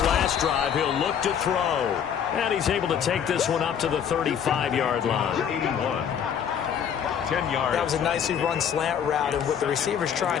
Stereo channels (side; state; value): right; quieter; 8.2 dB